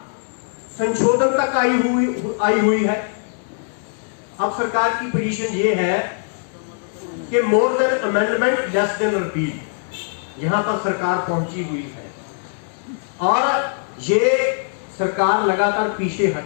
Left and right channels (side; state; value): right; silent; digital silence